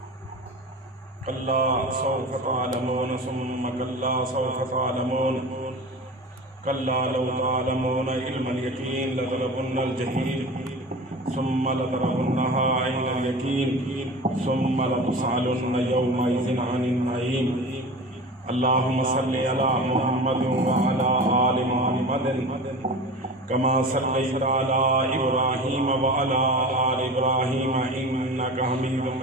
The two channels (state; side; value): normal; both; correlation 0.34